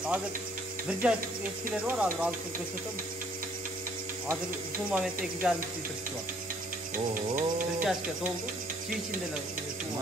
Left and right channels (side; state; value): both; normal; correlation 0.61